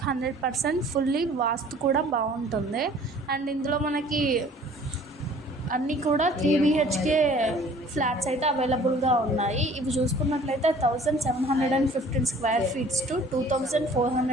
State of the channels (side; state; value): both; normal; correlation 0.51